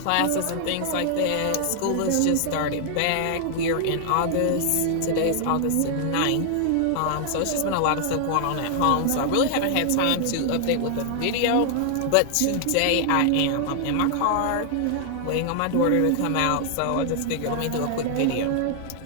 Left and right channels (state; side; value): different; both; correlation 0.00